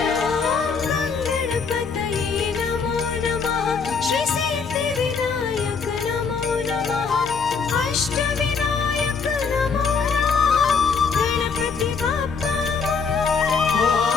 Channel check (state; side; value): quieter; right; 5.4 dB